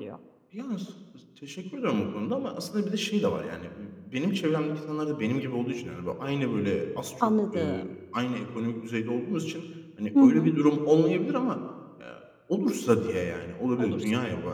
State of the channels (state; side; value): identical; both; correlation 1.00